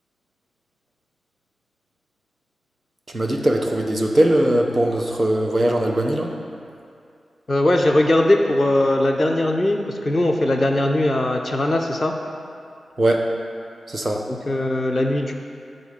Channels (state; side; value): normal; both; correlation 0.95